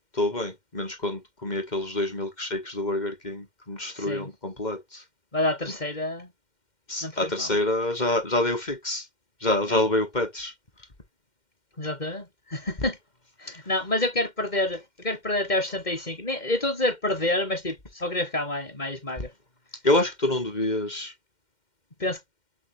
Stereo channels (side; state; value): right; late; 2.1 ms